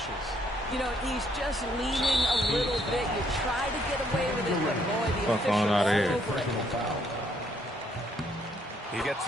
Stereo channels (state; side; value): normal; both; correlation 0.69